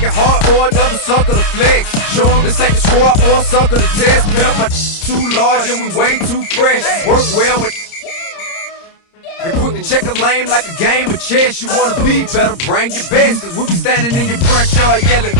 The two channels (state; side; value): late; right; 30 ms